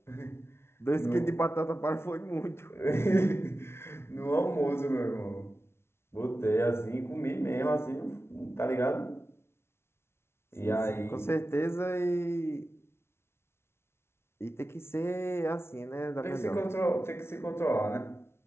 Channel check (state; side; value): late; right; 0.12 ms